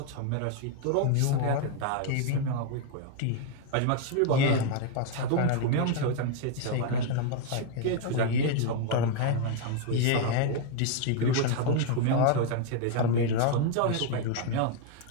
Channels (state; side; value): different; both; correlation 0.00